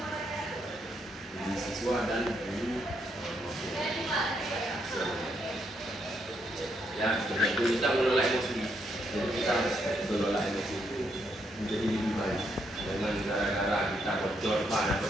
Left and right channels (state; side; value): normal; both; correlation 0.77